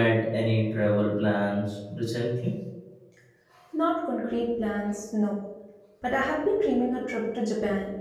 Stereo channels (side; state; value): both; identical; correlation 1.00